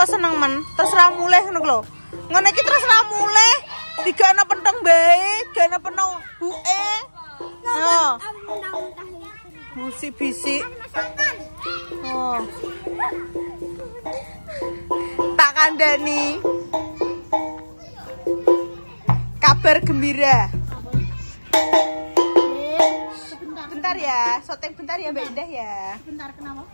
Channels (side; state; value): both; inverted; correlation -1.00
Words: seneng men? Terserah mulih ngono lho. Ngono iki terserah mulih. Digana pentong bae, gana pentong buke. Oh. Musik bisik. Oh. Tak kandani. Kabar gembira. Bentar ya, syuting bentar ya Mbak Indah ya. Bentar kenapa?